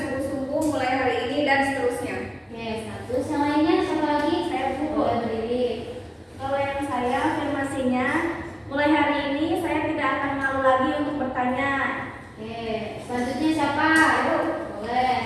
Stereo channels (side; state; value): both; identical; correlation 1.00